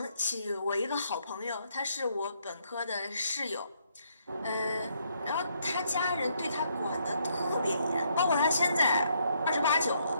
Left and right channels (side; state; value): both; inverted; correlation -0.72